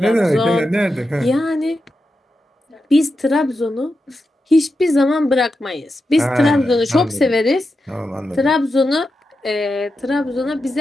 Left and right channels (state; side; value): normal; both; correlation 0.89